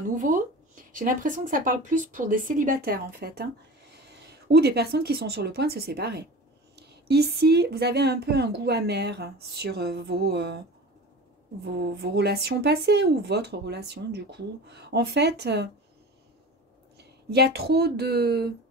J'ai l'impression que ça parle plus pour des célibataires, en fait. Hein, ou des personnes qui sont sur le point de se séparer. Ici, vous avez un peu un goût amer sur vos relations passées ou votre relation, du coup. En fait, il y a trop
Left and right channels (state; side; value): normal; both; correlation 0.35